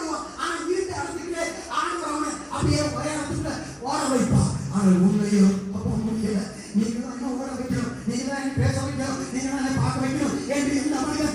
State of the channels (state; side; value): identical; both; correlation 1.00